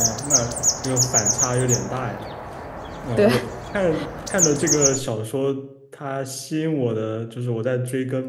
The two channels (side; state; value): both; identical; correlation 1.00